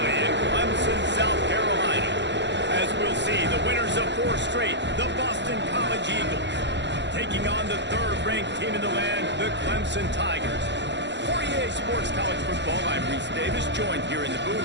in Clemson, South Carolina. As we'll see, the winners of 4 straight, the Boston College Eagles, taking on the 3rd-ranked team in the land, the Clemson Tigers. For EA Sports College Football, I'm Reese Davis, joined here in the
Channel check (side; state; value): left; late; 0.52 ms